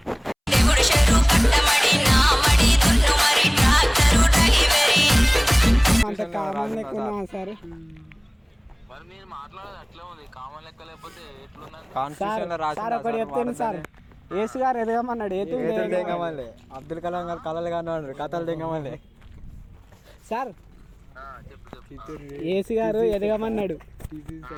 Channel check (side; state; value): both; identical; correlation 1.00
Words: అంత కామన్ లేకున్నా సార్ సార్ ఒకటి చెప్తాను సార్, ఏసు గారు ఎదగమన్నాడు అబ్దుల్ కలాం గారు కళలు కానివాడు కథలు దిగమలే సార్. ఏసు గారు ఎదగమన్నాడు,